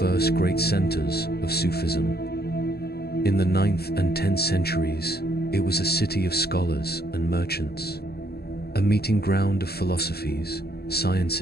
great centers of Sufism. In the 9th and 10th centuries, it was a city of scholars and merchants, a meeting ground of philosophies,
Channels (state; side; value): late; right; 0.46 ms